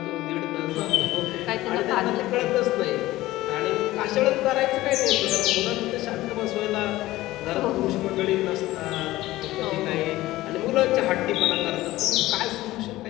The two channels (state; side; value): quieter; right; 17.0 dB